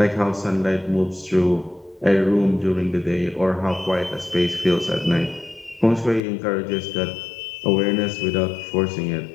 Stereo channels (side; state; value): right; drops out; at 6.2 s